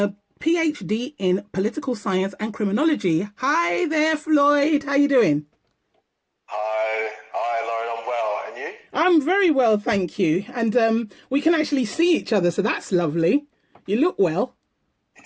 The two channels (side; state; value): both; identical; correlation 1.00